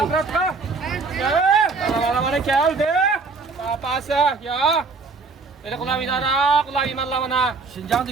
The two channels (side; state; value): left; quieter; 4.2 dB